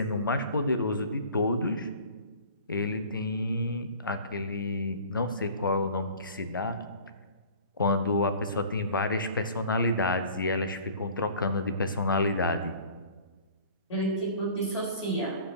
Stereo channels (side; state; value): both; inverted; correlation -0.46